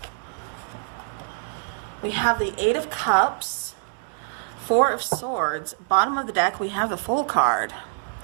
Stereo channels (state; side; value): silent; left; digital silence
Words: we have the Eight of Cups, Four of Swords. Bottom of the deck, we have the Fool card.